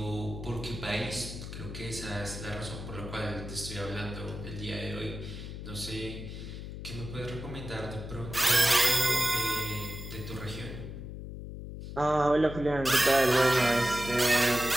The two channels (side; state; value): left; noise; hum, 9 dB below the sound